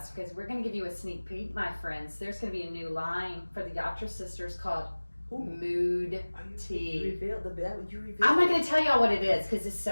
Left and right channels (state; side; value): inverted; both; correlation -1.00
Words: because we're going to give you a sneak peek, my friends. There's going to be a new line for the Yatra Sisters called mood You tea. revealed you revealed. I'm not going to tell y'all what it is because it's